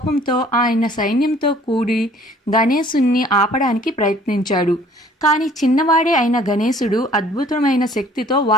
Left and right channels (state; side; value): normal; both; correlation 0.55